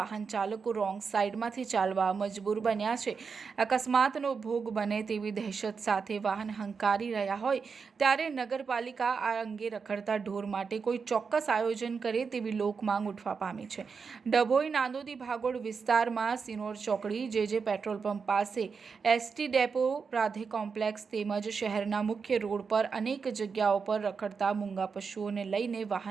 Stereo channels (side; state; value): left; quieter; 5.5 dB